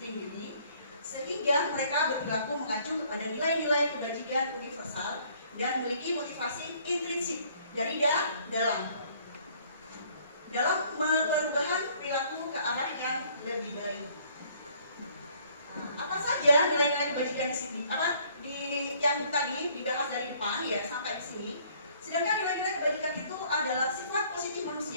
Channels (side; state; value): both; inverted; correlation -0.60